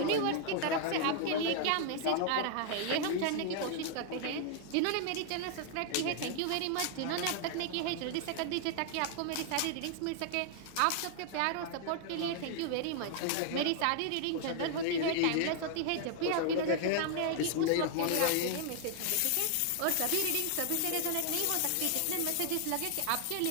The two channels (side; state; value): both; different; correlation 0.00